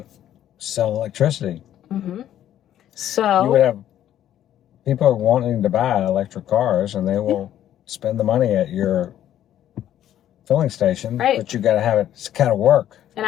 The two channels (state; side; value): quieter; right; 11.5 dB